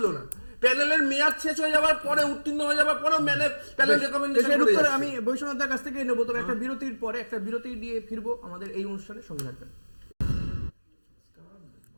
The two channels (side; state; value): both; inverted; correlation -1.00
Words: না? প্যানেলের মেয়াদ শেষ হয়ে যাওয়ার পরে, উত্তীর্ণ হয়ে যাওয়ার পরেও প্যানেল রেকমেন্ডেশন করে। আমি বৈষ্ণবদার কাছ থেকে নেব, তবে একটা বিরতির পরে, একটা বিরতি দিয়ে ফিরবো আমাদের এই অনুষ্ঠানের সঙ্গে থাকবেন।